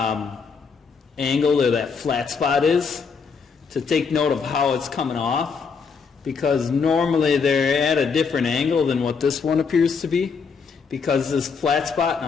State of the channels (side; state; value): right; quieter; 5.5 dB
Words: angle or that flat spot is to take note of how it's coming off, because normally they're at a different angle than what this one appears to be, because this flat spot, and